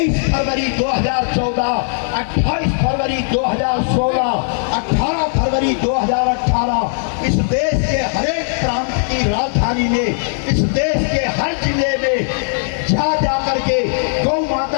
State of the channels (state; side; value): silent; right; digital silence